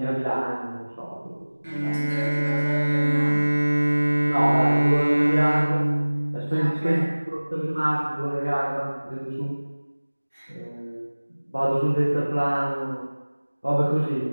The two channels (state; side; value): inverted; both; correlation -1.00